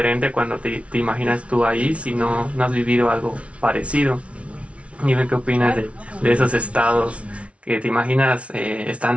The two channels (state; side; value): late; left; 0.062 ms